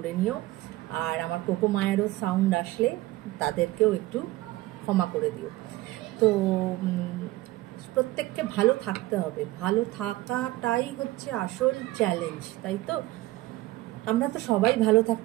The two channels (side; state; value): left; quieter; 18.1 dB